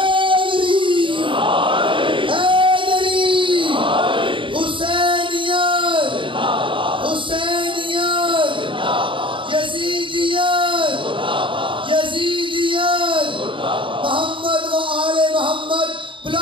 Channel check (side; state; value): left; late; 0.25 ms